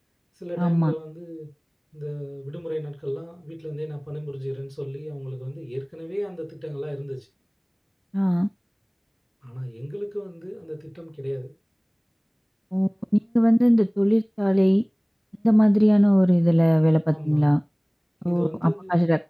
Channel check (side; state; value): both; identical; correlation 1.00